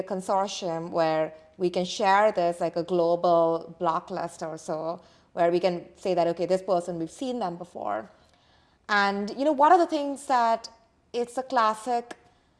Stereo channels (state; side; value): identical; both; correlation 1.00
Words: consortium where we can share this, like a global block list or so, where we can say that, okay, this person, we've seen them before. And, one of the things that it's a classic